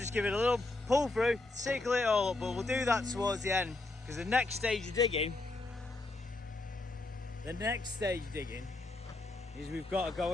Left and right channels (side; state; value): right; quieter; 3.0 dB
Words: give it a little pull through, circle it all up, but we'll do that towards the end because the next stage of digging is we've got to go